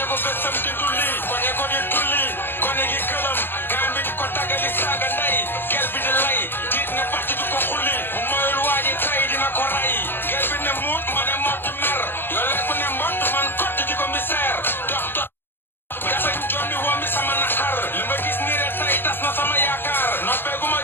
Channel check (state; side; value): late; right; 0.10 ms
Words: ko bésam di dulli koñe ko di tulli koñe gi këlam gaan bi di ko tàggali saaga ndey gel bi di lay diit ne parti di ko xulli bu moyul waaji tay dina ko ray gel bi ne muut ma ne mott mer yoo lekku ne mbott man kott di ko misère dox bi dafa jommi wommi sama naxar li ma gis nii rek tay tas na sama yaakaar noppeeguma